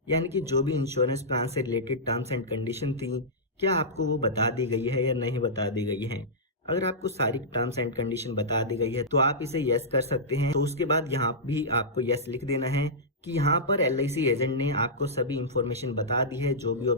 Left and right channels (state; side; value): normal; both; correlation -0.13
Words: यानी कि जो भी इंश्योरेंस प्लान से रिलेटेड टर्म्स एंड कंडीशन थी क्या आपको वो बता दी गई है या नहीं बता दी गई है। अगर आपको सारी टर्म्स एंड कंडीशन बता दी गई है तो आप इसे यस कर सकते हैं। तो उसके बाद यहाँ भी आपको यस लिख देना है कि यहाँ पर LIC एजेंट ने आपको सभी इंफॉर्मेशन बता दी है जो भी